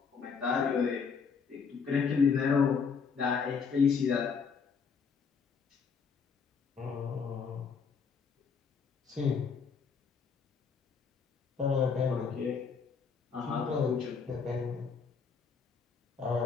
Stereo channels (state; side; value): quieter; right; 5.8 dB